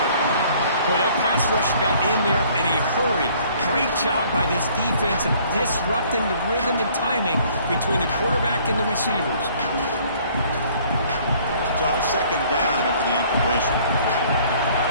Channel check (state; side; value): inverted; both; correlation -0.58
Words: Well, that pass rush got in there in a hurry. Great job by this defense of disrupting the rhythm and timing between the quarterback and the receivers. So second down after the incompletion.